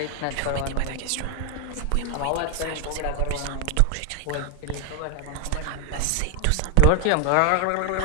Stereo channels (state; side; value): different; both; correlation 0.00